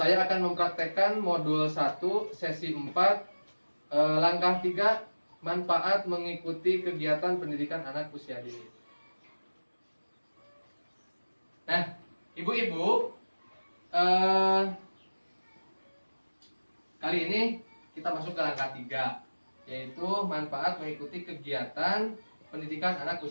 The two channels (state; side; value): inverted; both; correlation -1.00